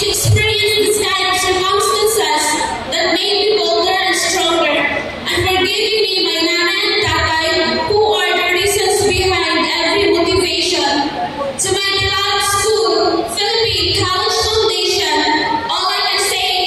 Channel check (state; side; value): identical; both; correlation 1.00